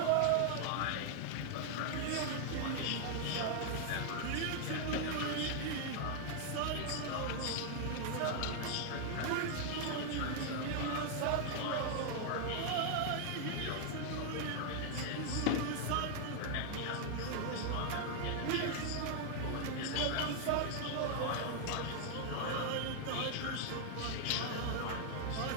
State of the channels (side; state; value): both; different; correlation 0.00